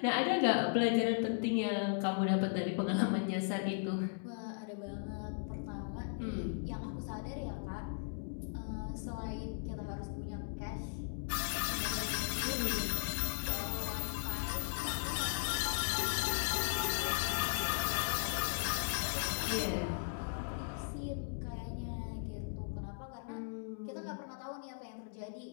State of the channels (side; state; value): right; silent; digital silence